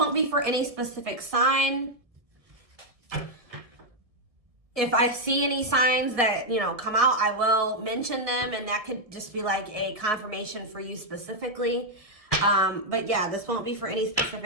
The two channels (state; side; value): late; left; 1.7 ms